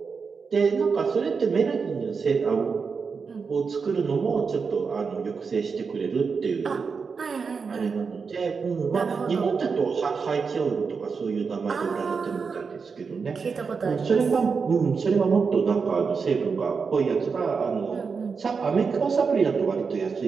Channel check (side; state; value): left; quieter; 5.3 dB